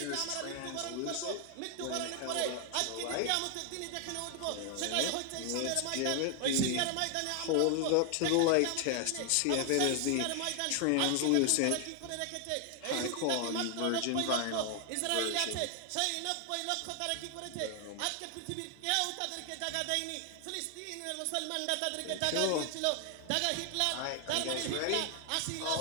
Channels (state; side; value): different; both; correlation 0.00